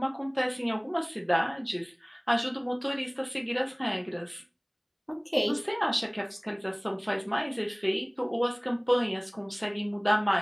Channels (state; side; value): identical; both; correlation 1.00